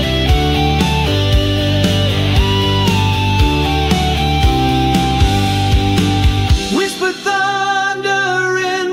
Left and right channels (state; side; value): identical; both; correlation 1.00